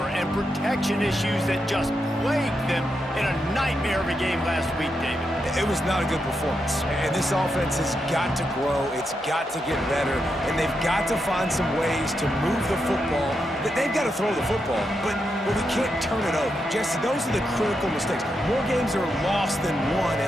and protection issues that just plagued them in a nightmare of a game last week, David. It was not a good performance. And this offense has got to grow. It's got to get better. And they've got to find some ways to move the football. They've got to throw the football, but we can't turn it over. Jesse, those are the critical mistakes. More games are lost than won.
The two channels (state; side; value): normal; both; correlation 0.84